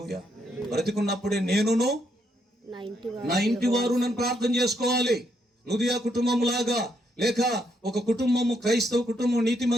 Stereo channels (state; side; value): normal; both; correlation 0.76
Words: బ్రతికున్నప్పుడే నేనును నా ఇంటి వారు నన్ను ప్రార్థన చేసుకోవాలి. నుదియా కుటుంబం లాగా, లేక ఒక కుటుంబము, క్రైస్తవ కుటుంబం